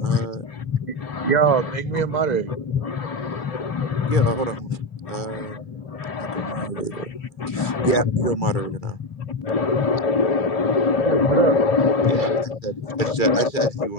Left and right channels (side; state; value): right; late; 2.3 ms